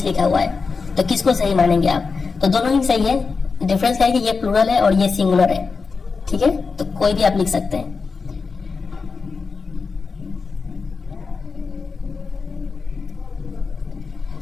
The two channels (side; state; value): right; quieter; 4.7 dB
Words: लिखा हुआ है। तो किसको सही मानेंगे आप? तो दोनों ही सही है। डिफरेंस क्या है कि ये प्लूरल है और ये सिंगुलर है। ठीक है, तो कोई भी आप लिख सकते हैं।